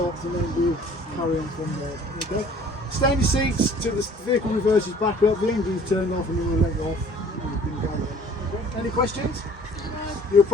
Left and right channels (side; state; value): both; normal; correlation 0.52